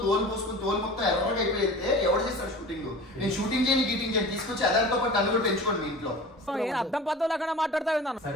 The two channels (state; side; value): normal; both; correlation 0.38